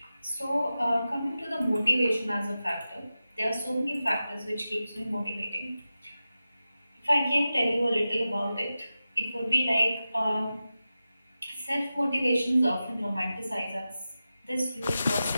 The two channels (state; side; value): inverted; both; correlation -0.93